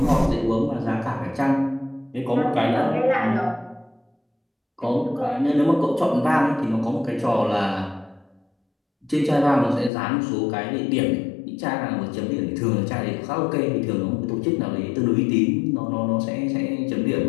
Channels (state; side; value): drops out; right; at 9.9 s